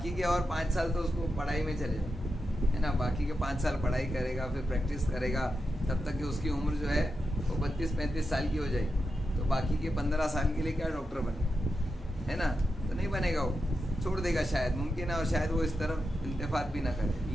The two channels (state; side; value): normal; both; correlation 0.88